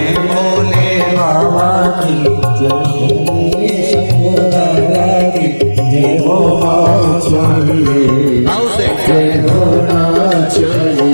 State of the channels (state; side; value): inverted; both; correlation -1.00